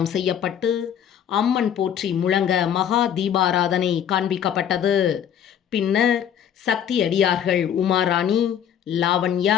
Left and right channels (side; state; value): right; quieter; 9.2 dB